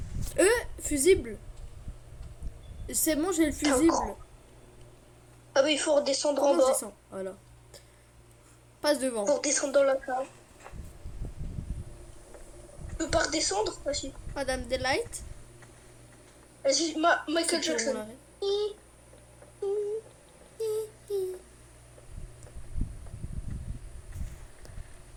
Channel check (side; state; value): both; identical; correlation 1.00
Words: Fusible. C'est bon, j'ai le fusible. Ah bah il faut redescendre en Comment je bas. descends? Voilà. Passe devant. Pour descendre dans la cave. Tu peux pas redescendre? Vas-y. Madame Delight. Vas-y, Michael C'est bon, on Jackson. l'arrête.